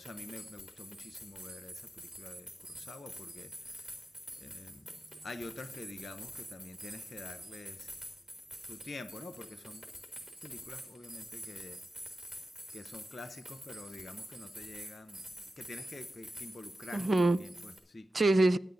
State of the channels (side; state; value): both; normal; correlation 0.92